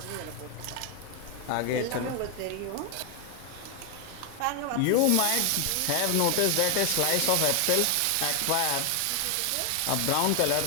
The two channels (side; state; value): both; different; correlation 0.01